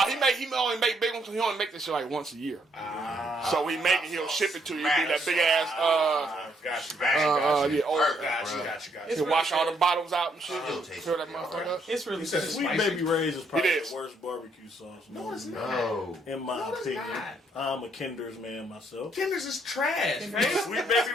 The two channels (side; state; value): both; normal; correlation 0.71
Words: he only make big ones. He only make this shit like once a year. So he make it. He'll ship it to you. It'll be that big ass. Got you. Yeah, old. Got you. It's He'll really wash all good. the bottles out and shit. Still tastes Fill that good, motherfucker alright. up. It's really You said good. it's Sweet spicy. Baby Ray's is probably It is. the worst barbecue sauce. No, it's not. No. In my it's opinion, not. I'm a Kinder's man myself. Kinder's is trash. Kinder's- man. Sweet Baby